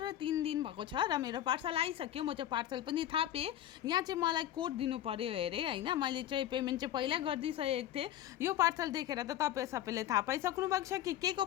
3 दिन भएको छ र मेरो पार्सल आइसक्यो। म चाहिँ पार्सल पनि थापेँ। यहाँ चाहिँ मलाई कोड दिनु पर्यो अरे होइन, मैले चाहिँ पेमेन्ट चाहिँ पहिला गरिदिइसकेको थिएँ। यो पार्सल देखेर त तपाईँ सबैले थाहा पाइसक्नु भएको छ कि के को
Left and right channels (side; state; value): right; quieter; 12.1 dB